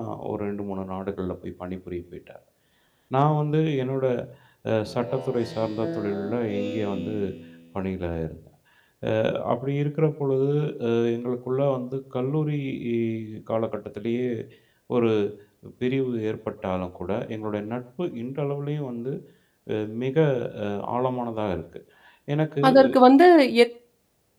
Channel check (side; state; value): both; identical; correlation 1.00